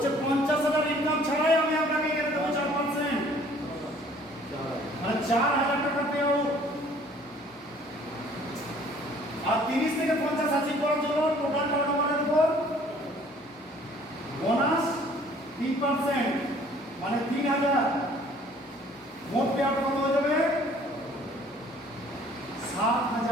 50,000 ইনকাম ছাড়াই আমি আপনাকে এখানে দেবো 4%, মানে 4,000 টাকা পেও। আর 30 থেকে 50 অ্যাচিভ করার জন্য টোটাল টার্নওভারের উপর বোনাস 3%, মানে 3,000। মোট পে আউট কত হয়ে যাবে?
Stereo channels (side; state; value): both; normal; correlation 0.55